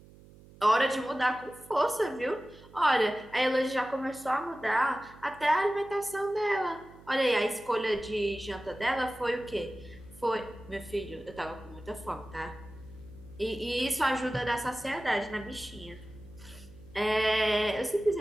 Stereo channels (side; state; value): right; noise; hum, 22 dB below the sound